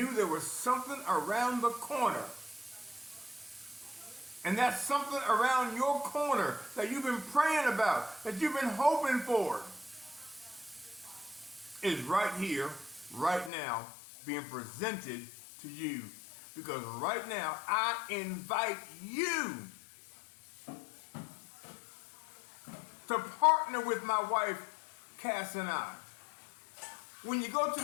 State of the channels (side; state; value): right; drops out; at 13.5 s